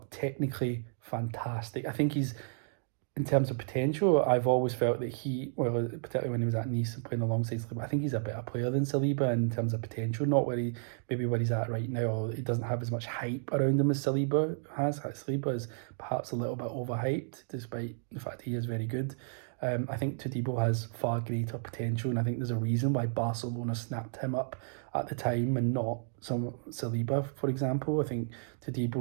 technically fantastic. I think he's, in terms of potential, I've always felt that particularly when he was at Nice and playing alongside Saliba, I think he's a better player than Saliba in terms of potential, not where he's at right now, or he doesn't have as much hype around him as Saliba has. Saliba is perhaps a little bit overhyped, despite the fact he is very good. I think Todibo has far greater potential, and I think there's a reason why Barcelona snapped him up at the time and not some Saliba, for example. I think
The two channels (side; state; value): left; silent; digital silence